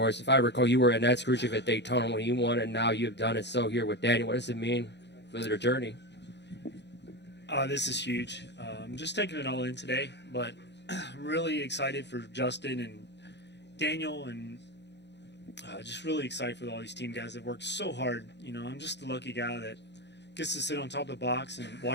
If I recall, you were in that Khrushchev at Daytona when he won, and now you've done it so here with Daniel. What does it mean for their journey? This is huge. I'm just taking it all in today, but I'm really excited for Justin and Daniel, and just really excited for all these team guys that worked so hard. I'm just the lucky guy that gets to sit on top of the box and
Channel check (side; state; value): right; late; 0.50 ms